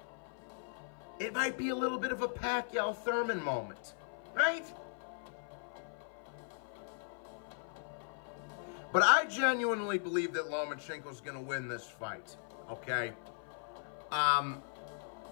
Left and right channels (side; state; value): right; silent; 52 dB below the other